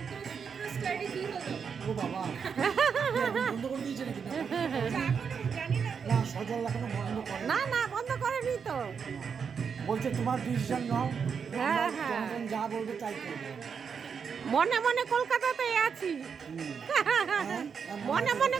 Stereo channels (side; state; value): left; quieter; 6.4 dB